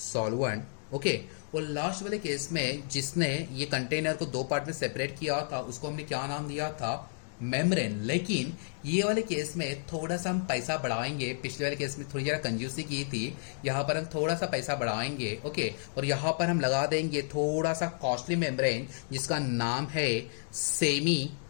ओके, और लास्ट वाले केस में जिसने ये कंटेनर को दो पार्ट में सेपरेट किया था उसको हमने क्या नाम दिया था, मेम्ब्रेन। लेकिन ये वाले केस में थोड़ा सा हम पैसा बढ़ाएंगे, पिछले वाले केस में थोड़ी जरा कंजूसी की थी, यहाँ पर हम थोड़ा सा पैसा बढ़ाएंगे। ओके, और यहाँ पर हम लगा देंगे थोड़ा सा कॉस्टली मेम्ब्रेन जिसका नाम है semi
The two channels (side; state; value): right; silent; digital silence